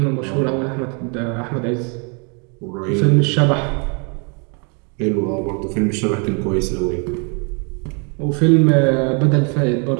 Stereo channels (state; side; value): quieter; left; 36.3 dB